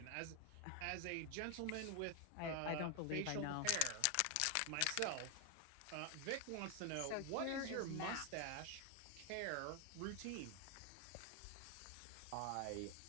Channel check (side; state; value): both; different; correlation 0.01